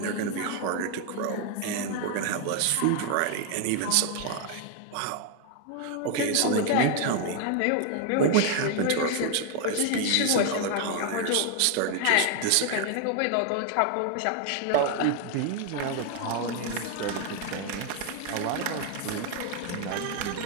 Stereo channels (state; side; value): different; both; correlation 0.00